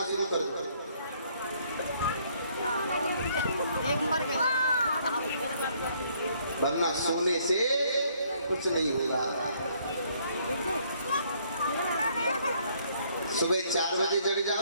शुरू कर दो। वरना सोने से कुछ नहीं होगा। सुबह 4 बजे जग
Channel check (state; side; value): inverted; both; correlation -0.66